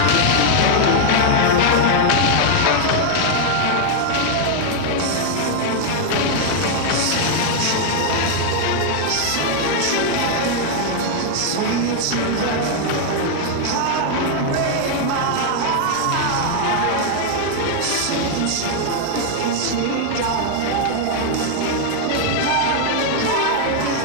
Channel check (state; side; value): different; both; correlation 0.00